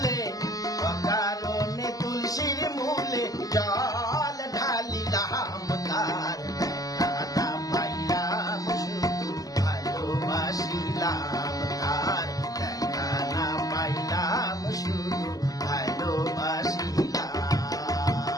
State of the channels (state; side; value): late; right; 0.17 ms